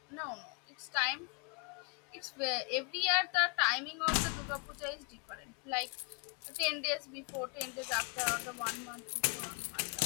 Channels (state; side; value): quieter; right; 35.2 dB